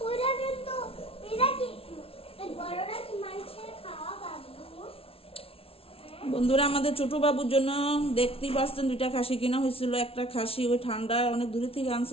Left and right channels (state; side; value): late; right; 0.27 ms